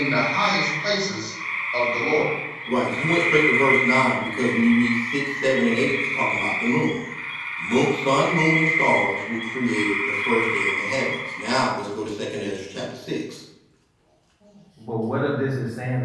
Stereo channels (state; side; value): identical; both; correlation 1.00